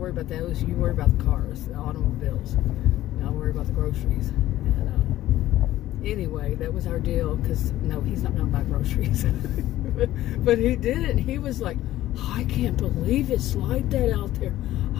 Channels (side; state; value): right; quieter; 14.5 dB